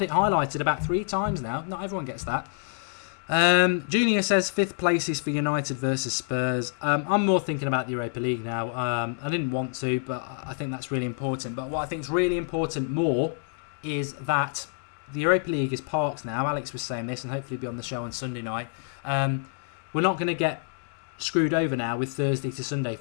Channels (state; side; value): silent; right; 60 dB below the other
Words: it highlighted about 3 times now. Not everyone gets that. Junior says 5th place is for United versus Spurs. I'm more thinking about the Europa League now. I didn't want to, but I think that's really important. But what I think is really important more is that the Europa League is parked now. Alex was saying this, and hopefully be on the show on Sunday night. We're not going to get screwed over now with Thursday to Sunday